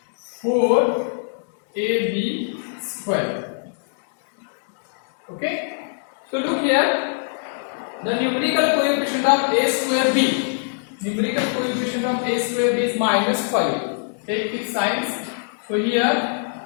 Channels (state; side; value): silent; right; digital silence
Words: 4ab square. Okay, so look here, the numerical coefficient of a square b, numerical coefficient of a square b is minus 5. Take its signs. So here